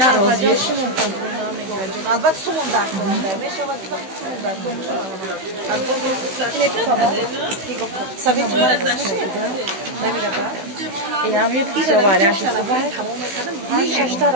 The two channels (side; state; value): left; late; 16 ms